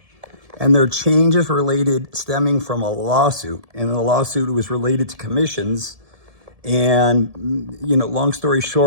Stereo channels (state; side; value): late; left; 1.7 ms